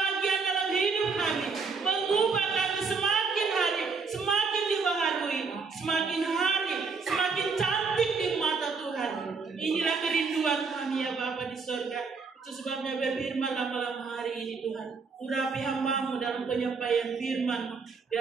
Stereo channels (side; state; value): left; quieter; 4.8 dB